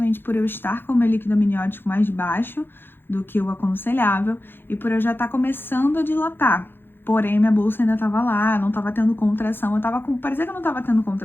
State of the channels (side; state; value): right; late; 0.10 ms